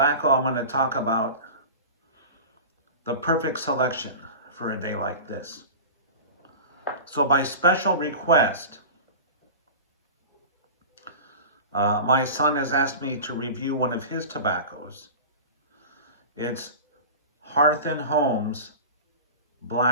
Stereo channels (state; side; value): inverted; both; correlation -0.33